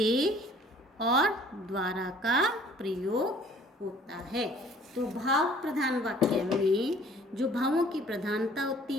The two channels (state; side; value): normal; both; correlation 0.54